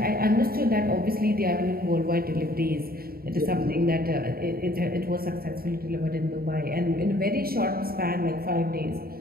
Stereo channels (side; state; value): left; late; 0.44 ms